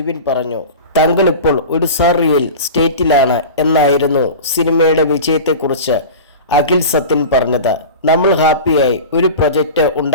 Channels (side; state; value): both; inverted; correlation -0.31